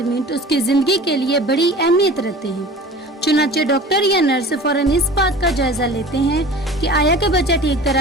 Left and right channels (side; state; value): both; normal; correlation 0.40